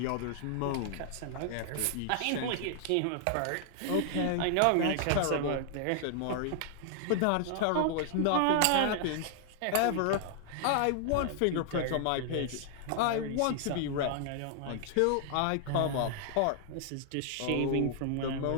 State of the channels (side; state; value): both; different; correlation 0.00